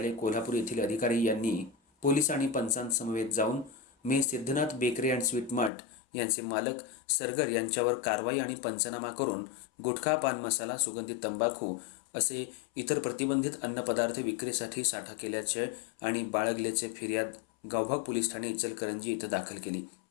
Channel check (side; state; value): right; drops out; at 5.7 s